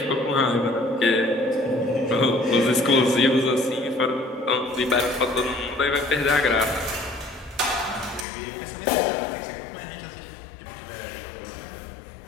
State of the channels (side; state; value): right; drops out; at 8.2 s